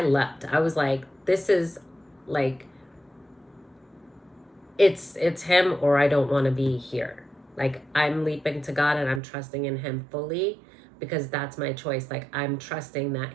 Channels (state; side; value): drops out; left; at 9.2 s